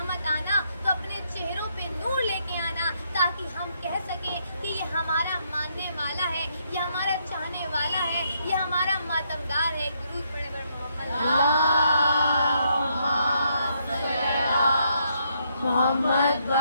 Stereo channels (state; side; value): inverted; both; correlation -0.74